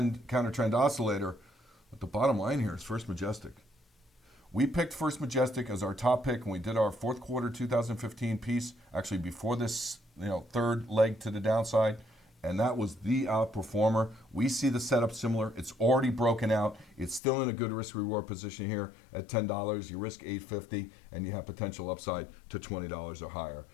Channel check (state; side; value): drops out; right; at 17.2 s